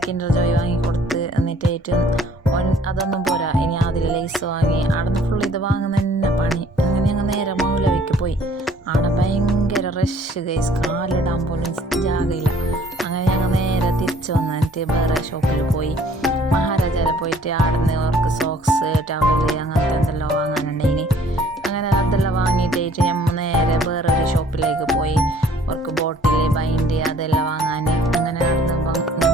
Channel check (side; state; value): both; normal; correlation 0.56